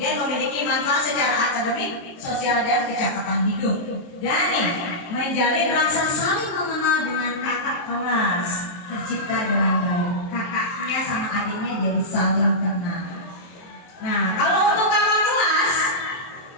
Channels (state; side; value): late; right; 23 ms